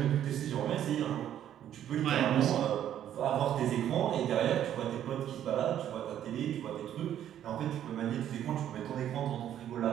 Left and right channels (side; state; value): left; quieter; 10.8 dB